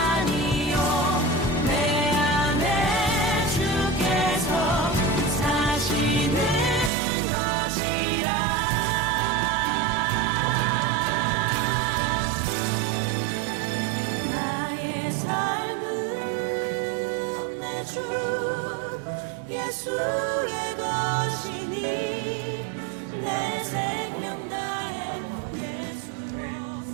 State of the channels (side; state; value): left; drops out; at 6.9 s